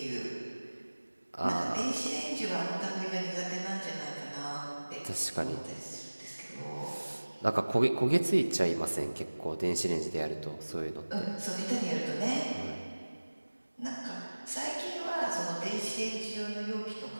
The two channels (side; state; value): both; inverted; correlation -1.00